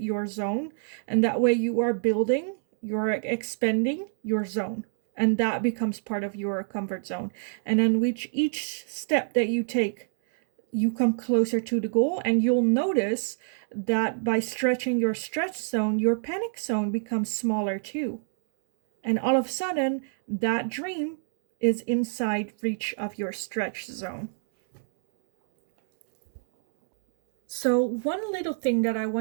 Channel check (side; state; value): left; silent; digital silence